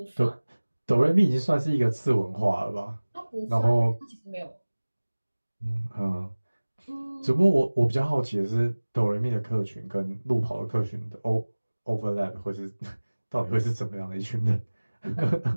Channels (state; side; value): inverted; both; correlation -1.00